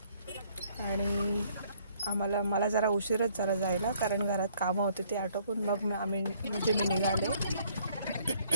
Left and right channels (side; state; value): both; inverted; correlation -0.63